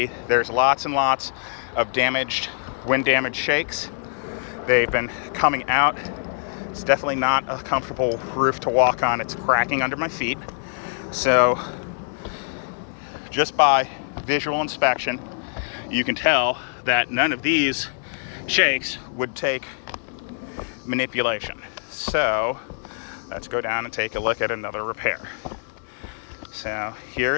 there's lots and lots of wind damaged shakes. They've been coming out. It's definitely not a comfortable roof to walk on. It's cracking under my feet. So just by visual inspection, you can tell that none of these shakes would take manipulation. So let's go down and take a look at another repair. So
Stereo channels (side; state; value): right; silent; digital silence